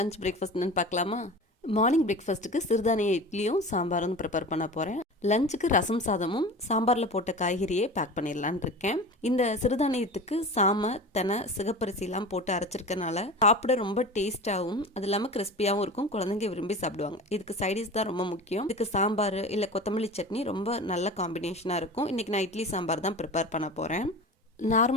breakfast என்னன்னு பார்க்கலாமா? Morning பிரேக்ஃபாஸ்ட்டுக்கு சிறுதானிய இட்லியும் சாம்பாரும் ப்ரிப்பேர் பண்ண போகிறேன். லஞ்சுக்கு ரசம் சாதமும் சாம்பாரில் போட்ட காய்கறியே பேக் பண்ணிடலான் இருக்கேன். இந்த சிறுதானியத்துக்கு சாமை, தெனை, சிகப்பரிசிலாம் போட்டு அரைச்சிருக்கனால சாப்பிட ரொம்ப டேஸ்ட்டாகவும் அது இல்லாமல் கிறிஸ்பியாகவும் இருக்கும். குழந்தைங்க விரும்பி சாப்பிடுவாங்க. இதுக்கு சைடிஷ் தான் ரொம்ப முக்கியம். இதுக்கு சாம்பார் இல்லை கொத்தமல்லி சட்னி ரொம்ப நல்ல காம்பினேஷனாக இருக்கும். இன்றைக்கி நான் இட்லி சாம்பார் தான் ப்ரிப்பேர் பண்ண போகிறேன்.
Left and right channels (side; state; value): both; normal; correlation 0.34